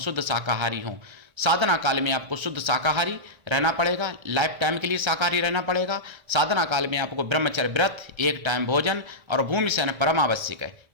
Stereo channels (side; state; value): left; late; 1.3 ms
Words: शाकाहारी हों। साधना काल में आपको शुद्ध शाकाहारी रहना पड़ेगा, लाइफ टाइम के लिए शाकाहारी रहना पड़ेगा। साधना काल में आपको ब्रह्मचर्य व्रत, 1 टाइम भोजन और भूमि शयन परम आवश्यक है।